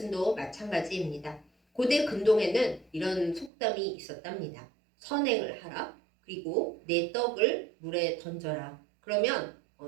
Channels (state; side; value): drops out; left; at 3.5 s